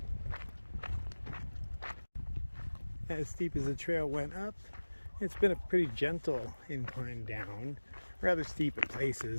As steep as the trail went up, it's been a pretty gentle incline down. Rather steep at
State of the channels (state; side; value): inverted; both; correlation -1.00